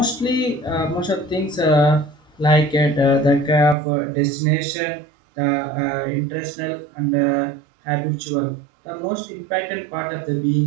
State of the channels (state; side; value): drops out; left; at 3.8 s